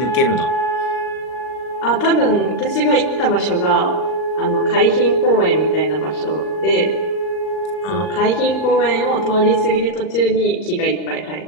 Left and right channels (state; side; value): late; right; 39 ms